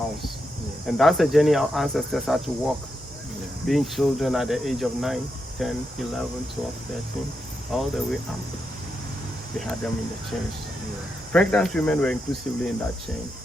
And that's the journey our ancestors had to walk. Being children at the age of 9, 10, 11, 12, 13, all the way up. They had them in the chains. Pregnant women were inclusively in that chain,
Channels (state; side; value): normal; both; correlation 0.85